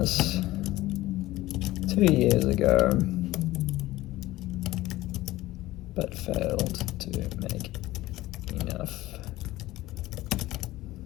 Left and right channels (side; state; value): right; quieter; 17.1 dB